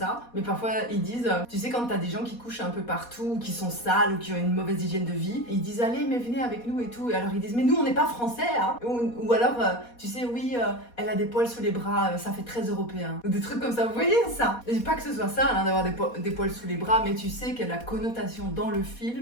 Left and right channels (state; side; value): late; right; 4.2 ms